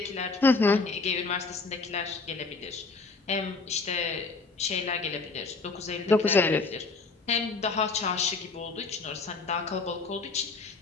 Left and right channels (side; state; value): right; quieter; 4.0 dB